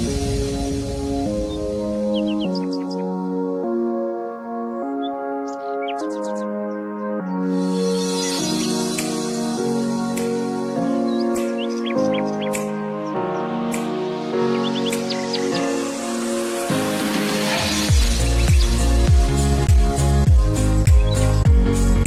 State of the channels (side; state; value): both; identical; correlation 1.00